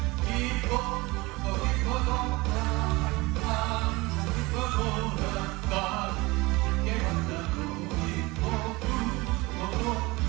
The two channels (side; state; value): left; quieter; 22.8 dB